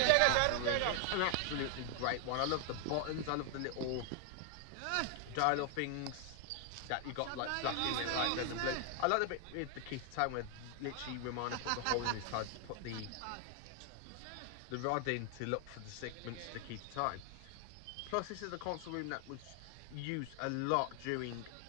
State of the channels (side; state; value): both; different; correlation 0.00